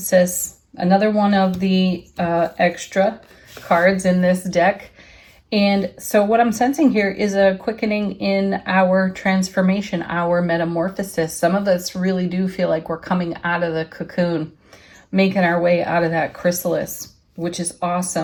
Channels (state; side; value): identical; both; correlation 1.00